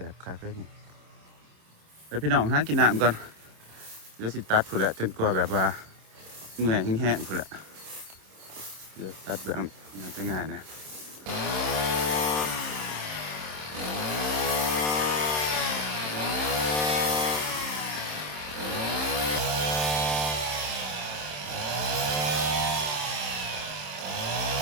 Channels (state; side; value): late; left; 27 ms